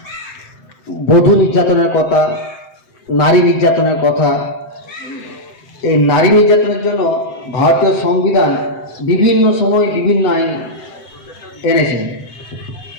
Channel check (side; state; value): right; late; 7.8 ms